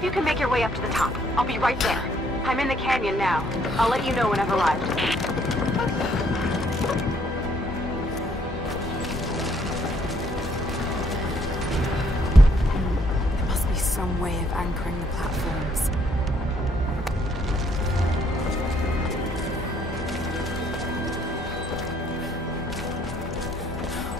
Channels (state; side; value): normal; both; correlation 0.67